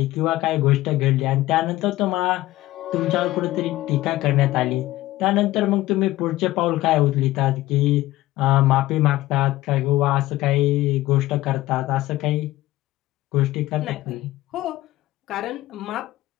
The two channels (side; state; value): right; quieter; 16.7 dB